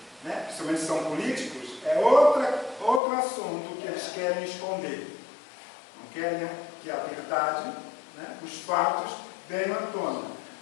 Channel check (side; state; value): right; drops out; at 3.0 s